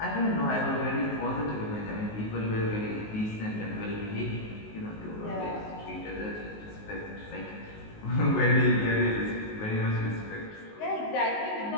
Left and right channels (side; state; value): right; late; 19 ms